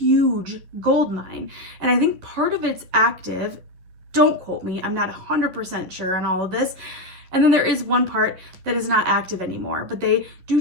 gold mine. And I think part of it's active. Don't quote me. I'm not 100% sure on all of this. And then there is one part that is not active anymore, but they do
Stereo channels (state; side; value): late; left; 11 ms